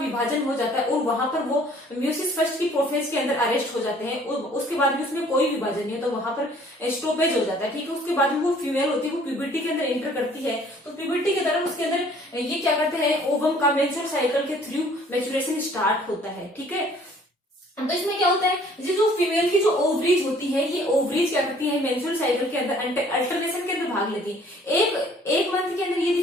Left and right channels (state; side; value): normal; both; correlation 0.56